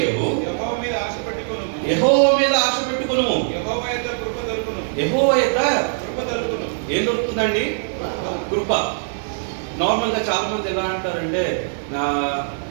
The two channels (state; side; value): silent; left; digital silence